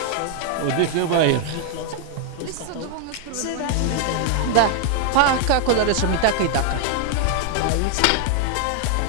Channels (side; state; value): both; different; correlation 0.00